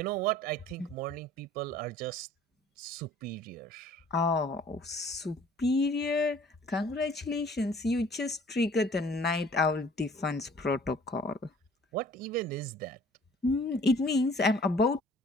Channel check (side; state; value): both; normal; correlation 0.53